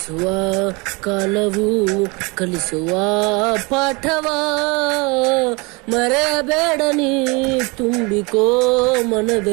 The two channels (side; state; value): left; quieter; 27.6 dB